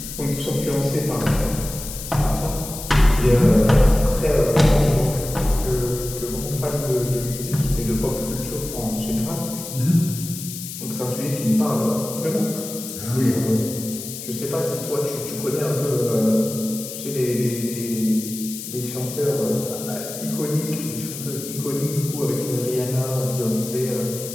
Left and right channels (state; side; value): noise; left; hiss, 9 dB below the sound